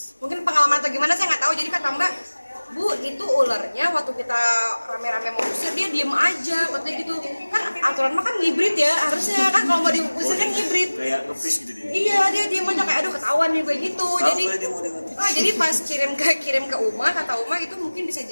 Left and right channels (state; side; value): inverted; both; correlation -1.00